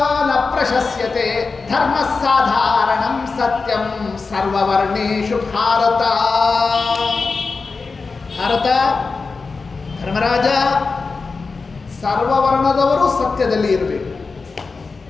ನ ಪ್ರಶಸ್ಯತೆ, ಧರ್ಮ ಸಾಧಾರಣಂ ಸತ್ಯಂ ಸರ್ವವರ್ಣೇಷು ಭಾರತ. ಭಾರತ, ಧರ್ಮರಾಜ, ಸರ್ವವರ್ಣದವರು ಸತ್ಯದಲ್ಲಿ ಇರಬೇಕು.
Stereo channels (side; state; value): right; quieter; 4.4 dB